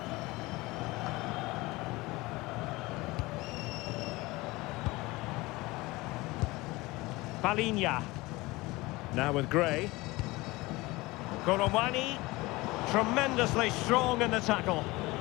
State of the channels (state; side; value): quieter; right; 21.4 dB